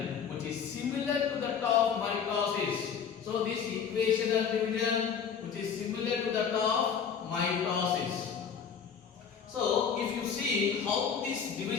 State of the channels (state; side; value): quieter; right; 7.1 dB